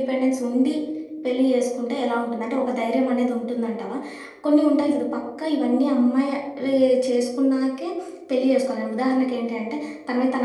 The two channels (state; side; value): identical; both; correlation 1.00